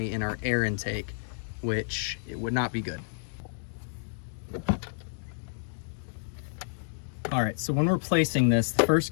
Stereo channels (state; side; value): silent; right; digital silence